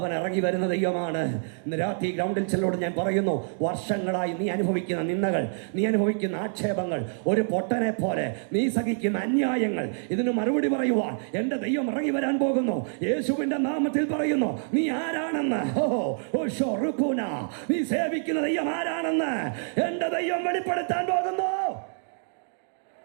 ഇറങ്ങി വരുന്ന ദൈവമാണ്. ഇന്ന് രാത്രി ഗ്രൗണ്ടിൽ ചിലരോട് ഞാൻ പറയുന്നു, വർഷങ്ങളായി നീ അനുഭവിക്കുന്ന നിന്ദകൾ, നീ അനുഭവിക്കുന്ന ആക്ഷേപങ്ങൾ, ഒരു പൊട്ടനെ പോലെ നീ സഹിക്കുന്ന അന്യായങ്ങൾ, ഇതിന് മറുപടി പറയുവാൻ എൻ്റെ ദൈവം ഇറങ്ങി വരാൻ പോകുന്നു. യേശുവിൻ്റെ നാമത്തിൽ പറയുന്നു, നീ ആരാണെന്ന്, നീ സേവിക്കുന്ന ദൈവം ആരാണെന്ന് എൻ്റെ ദൈവം വെളിപ്പെടുത്താൻ പോകുന്നു.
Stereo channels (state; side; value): silent; left; digital silence